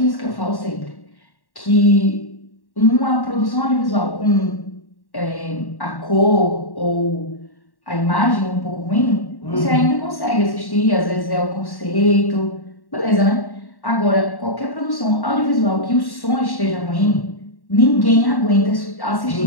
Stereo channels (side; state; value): right; late; 1.1 ms